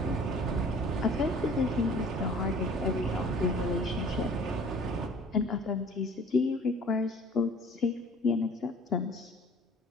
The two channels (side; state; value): both; normal; correlation 0.49